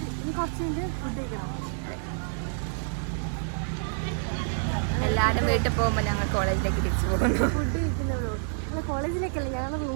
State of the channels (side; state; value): left; silent; digital silence